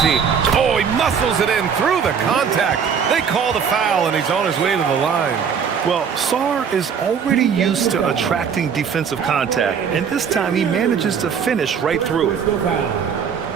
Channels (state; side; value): quieter; left; 6.9 dB